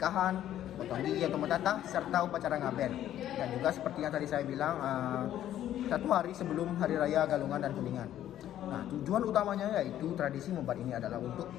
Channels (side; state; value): right; quieter; 11.9 dB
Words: potong gigi atau mentatah, serta upacara ngaben. Dan juga seperti yang tadi saya bilang, 1 hari sebelum Hari Raya Galungan dan Kuningan. Nah, tujuan utamanya yaitu tradisi membat ini adalah untuk